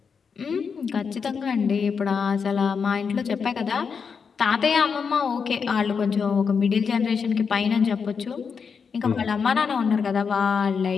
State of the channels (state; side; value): quieter; right; 6.0 dB